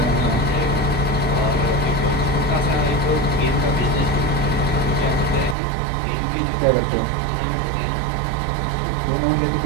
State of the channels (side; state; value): left; drops out; at 5.6 s